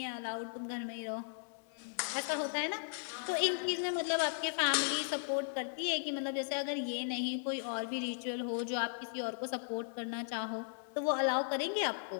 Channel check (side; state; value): right; silent; 53 dB below the other